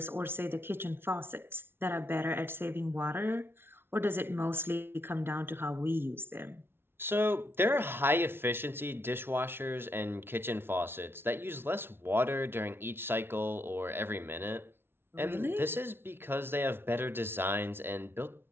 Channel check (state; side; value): late; left; 0.11 ms